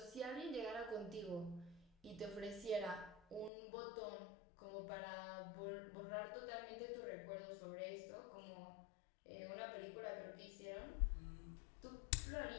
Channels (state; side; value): drops out; right; at 3.5 s